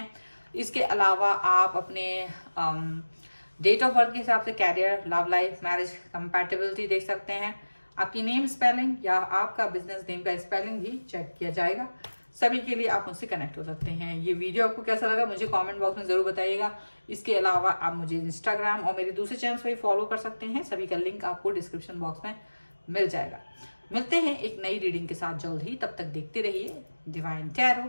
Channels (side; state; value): both; inverted; correlation -1.00